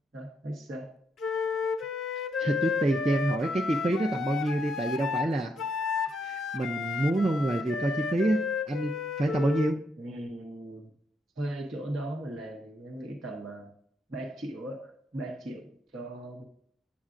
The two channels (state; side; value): normal; both; correlation 0.78